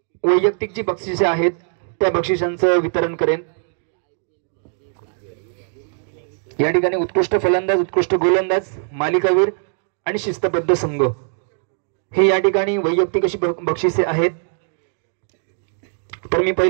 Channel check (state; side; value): silent; left; digital silence